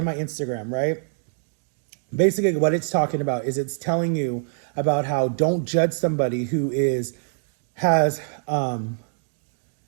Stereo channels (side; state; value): left; silent; digital silence